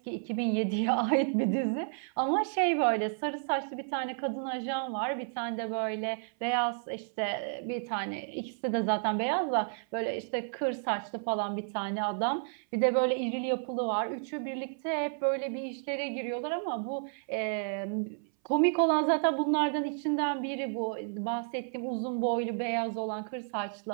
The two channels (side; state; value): left; silent; 57 dB below the other